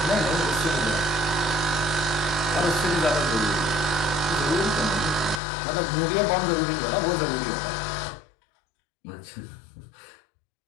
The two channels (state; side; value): drops out; right; at 5.4 s